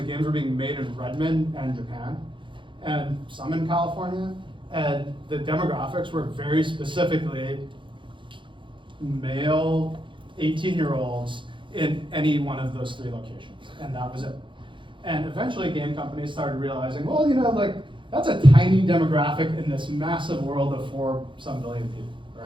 games were being made in Redmond and Japan, and some in California, and the demographics were very specifically male 18-year-olds in any one of those 3 locations, and that was it. And eventually game companies started realizing, well, that's a tiny demographic in this massive world of 4-some billion people,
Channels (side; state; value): left; late; 0.24 ms